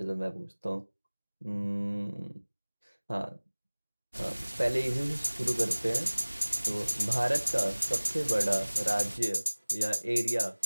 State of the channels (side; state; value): both; inverted; correlation -1.00